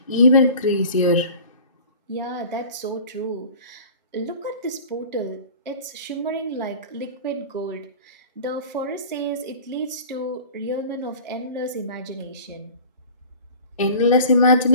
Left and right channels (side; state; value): both; inverted; correlation -0.41